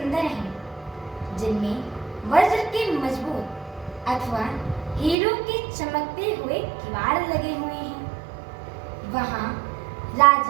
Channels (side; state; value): left; drops out; at 5.2 s